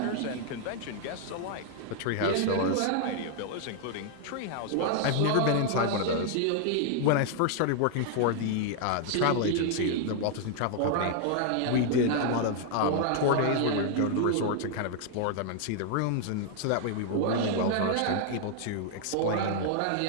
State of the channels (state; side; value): different; both; correlation 0.00